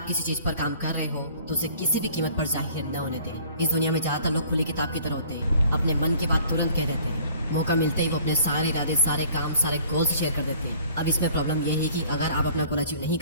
किसी चीज पर काम कर रहे हो तो उसे किसी भी कीमत पर जाहिर न होने दें। इस दुनिया में ज्यादातर लोग खुली किताब की तरह होते हैं, अपने मन की बात तुरंत कह देते हैं। मौका मिलते ही वो अपने सारे इरादे, सारे काम, सारे गोल्स शेयर कर देते हैं। अब इसमें प्रॉब्लम ये है कि अगर आप अपना गोल अचीव नहीं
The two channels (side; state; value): both; inverted; correlation -0.53